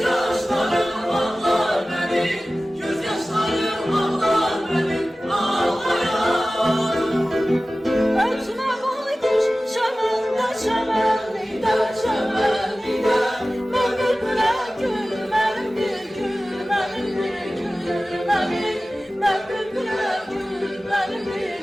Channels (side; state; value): both; normal; correlation 0.96